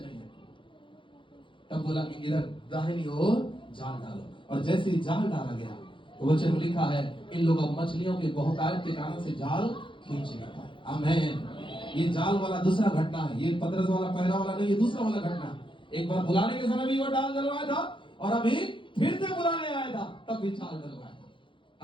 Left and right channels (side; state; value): right; late; 0.24 ms